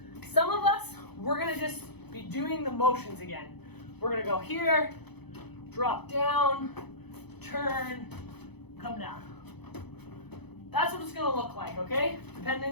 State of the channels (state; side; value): late; right; 0.98 ms